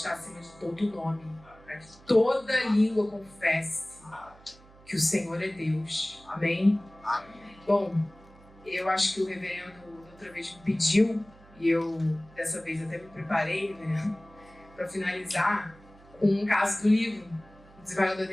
acima de todo nome, para que toda língua confesse que o Senhor é Deus. Amém? Bom, eu acho que o reverendo outra vez me pediu, e eu dessa vez até me preparei, né, para finalizar com um caso do livro. O desembargador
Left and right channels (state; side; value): noise; right; hum, 24 dB below the sound